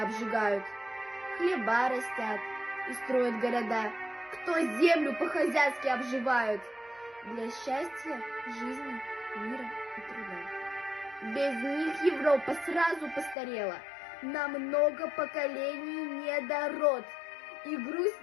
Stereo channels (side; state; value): right; drops out; at 13.4 s